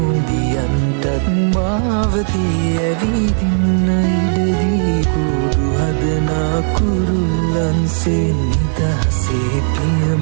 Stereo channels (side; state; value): left; silent; digital silence